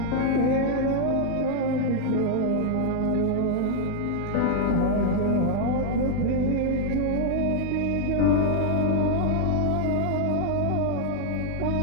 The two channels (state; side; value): different; both; correlation 0.00